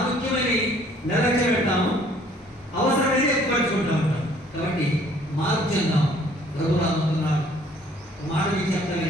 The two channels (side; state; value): both; normal; correlation 0.59